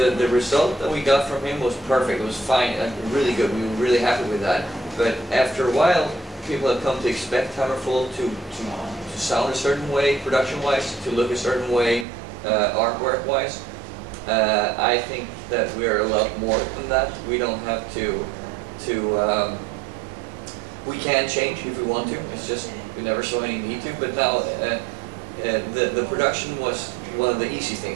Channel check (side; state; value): left; drops out; at 12.1 s